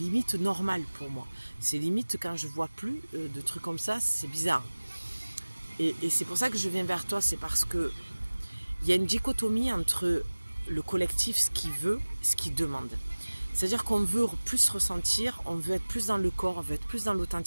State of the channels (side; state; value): both; inverted; correlation -1.00